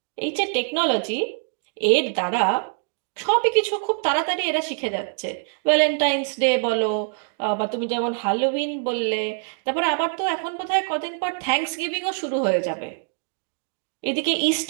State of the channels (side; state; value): left; silent; 63 dB below the other